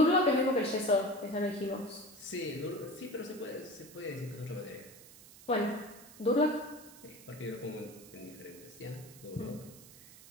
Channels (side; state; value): right; noise; hiss, 19 dB below the sound